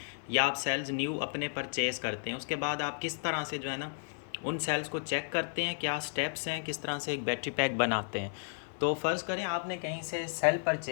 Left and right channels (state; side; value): silent; right; 56 dB below the other